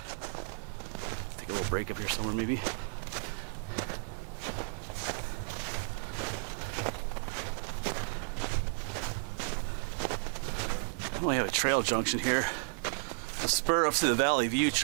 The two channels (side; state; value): left; silent; digital silence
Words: Take a little break up here somewhere maybe. We only have a trail junction here. A spur up to the Valley View